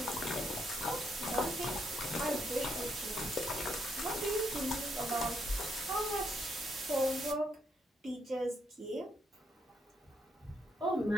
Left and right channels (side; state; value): both; normal; correlation 0.75